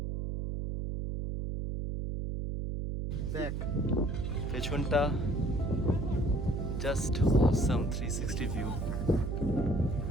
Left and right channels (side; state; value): right; noise; hum, 2 dB below the sound